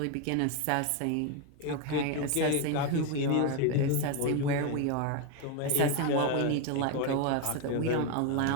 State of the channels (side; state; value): both; different; correlation 0.01